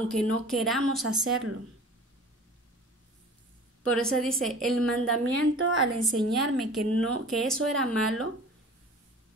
no queramos hacerlo. Por eso dice, el mandamiento al enseñarme que eso era malo,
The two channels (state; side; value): normal; both; correlation 0.42